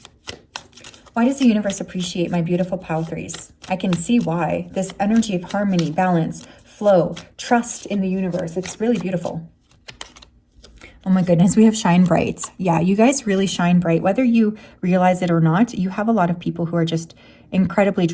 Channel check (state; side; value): identical; both; correlation 1.00